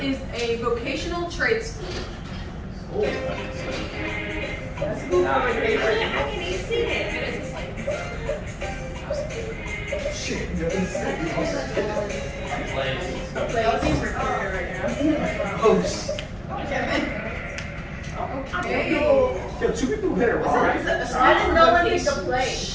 is a vocational trade school? How can you see it? Okay. Yo, two people hit it wrong. I didn't know when you could play.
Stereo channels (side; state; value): both; identical; correlation 1.00